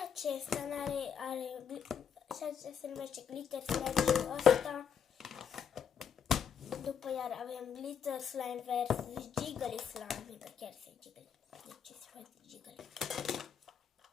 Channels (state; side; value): quieter; right; 7.6 dB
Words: acesta și acesta se numește glitter slime și ăsta. După iar avem glitter slime versus jiggly slime, că chiar se jiggly. Deci se face jiggly.